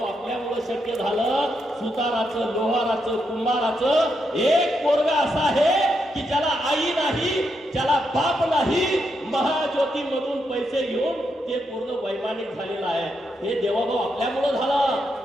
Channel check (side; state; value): both; normal; correlation 0.81